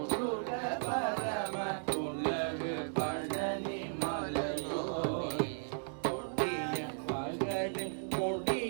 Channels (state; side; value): silent; left; digital silence